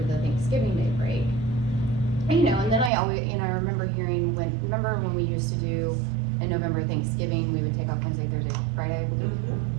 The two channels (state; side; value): drops out; left; at 2.9 s